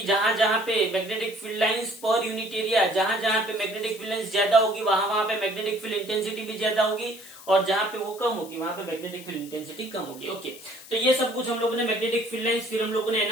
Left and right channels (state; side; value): noise; left; hiss, 18 dB below the sound